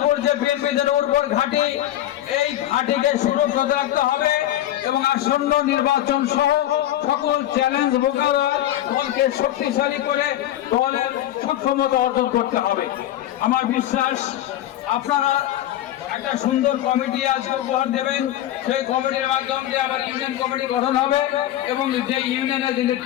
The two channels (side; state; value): right; quieter; 13.1 dB